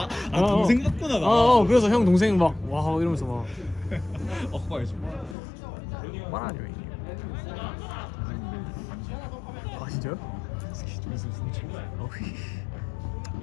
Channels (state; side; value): drops out; right; at 5.4 s